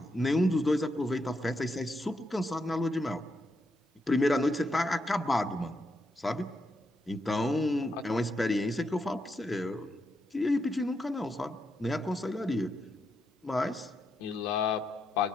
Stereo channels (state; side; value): normal; both; correlation 0.82